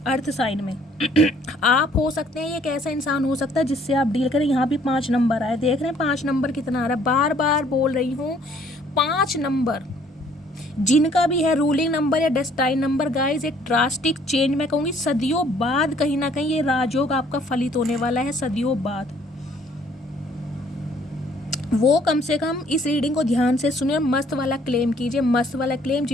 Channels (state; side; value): normal; both; correlation 0.61